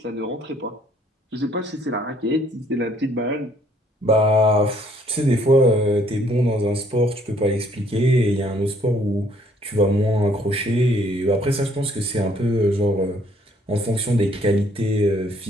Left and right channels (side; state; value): both; normal; correlation 0.64